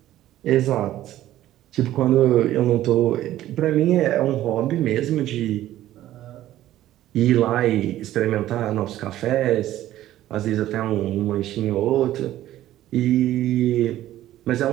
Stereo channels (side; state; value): left; quieter; 13.7 dB